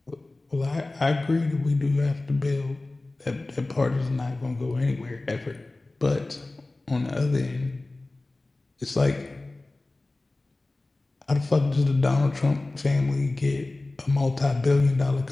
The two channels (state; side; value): quieter; right; 3.0 dB